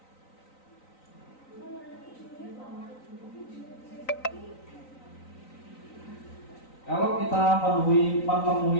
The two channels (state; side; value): late; right; 3.9 ms